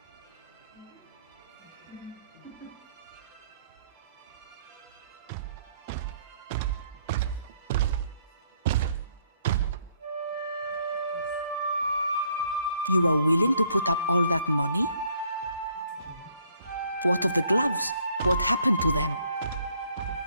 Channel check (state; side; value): inverted; both; correlation -0.66